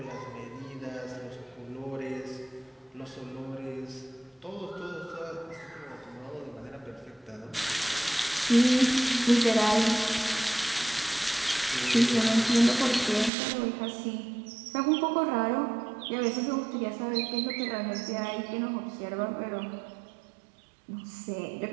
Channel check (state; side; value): drops out; left; at 13.3 s